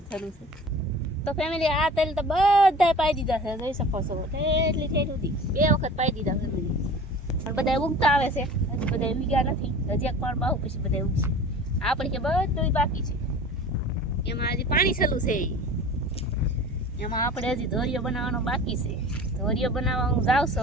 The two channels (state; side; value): normal; both; correlation 0.40